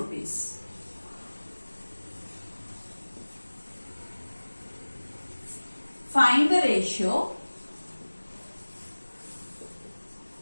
Find the ratio.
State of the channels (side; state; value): both; inverted; correlation -1.00